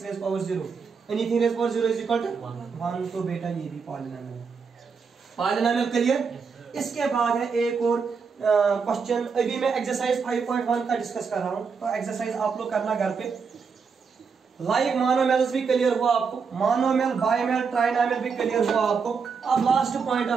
raise power 0, anything raise power 0 is equal to 1, तो बेटा ये भी पॉलिनोमियल है। Polynomial clear. इसके बाद है एक और क्वेश्चन, अभी मैं एक्सरसाइज 5.1 का डिस्कस कर रहा हूं, तो एक्सरसाइज आप लोग करना घर पे। लाइक मोनोमियल्स भी क्लियर हुआ आपको, मोनोमियल बाइमियल ट्राइनोमियल भी क्लियर हुआ आपको। अब last point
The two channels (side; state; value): left; quieter; 5.6 dB